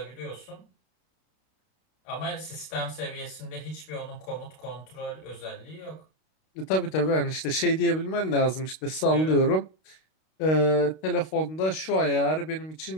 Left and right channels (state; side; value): late; right; 32 ms